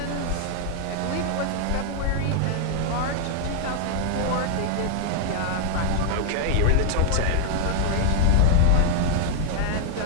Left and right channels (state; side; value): different; both; correlation 0.00